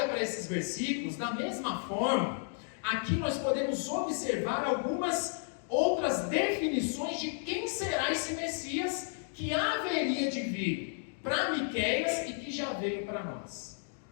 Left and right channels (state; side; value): silent; right; 56 dB below the other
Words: para esses versículos, da mesma forma, aqui nós podemos observar algumas outras definições de quem será esse Messias que haveria de vir para Miqueias e que já veio para nós.